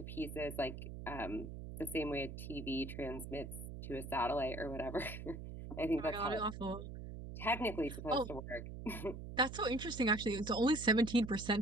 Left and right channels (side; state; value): right; noise; hum, 9 dB below the sound